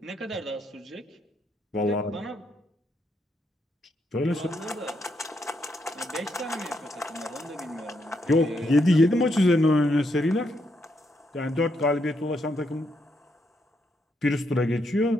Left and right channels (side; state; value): both; normal; correlation 0.78